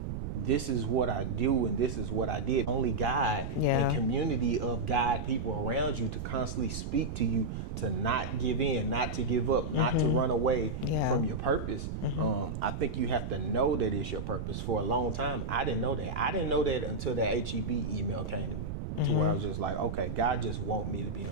this is what I do and this is what I did. Only God and community of God people around you to constantly speak to you, to not give in, not to give up, not to run away from your purpose. I think you have to know that it's your purpose. For a long time, I didn't know that. I didn't know that until that HEB email came to me, to where I was just like, okay, God just want me to be an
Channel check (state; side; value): noise; right; rumble, 5 dB below the sound